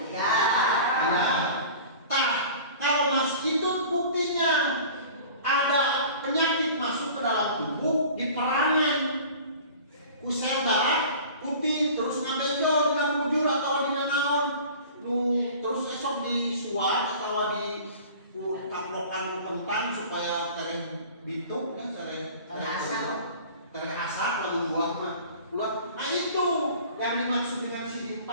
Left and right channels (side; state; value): both; inverted; correlation -0.42